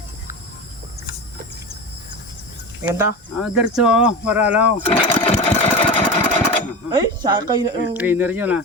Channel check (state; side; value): normal; both; correlation 0.26